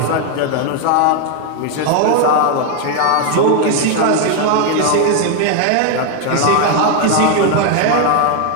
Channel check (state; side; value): different; both; correlation 0.00